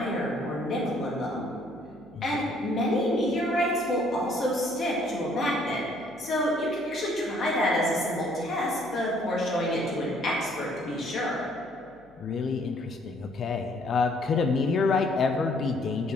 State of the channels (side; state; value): left; noise; hum, 29 dB below the sound